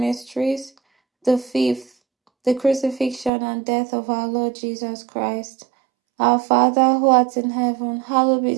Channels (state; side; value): drops out; left; at 3.3 s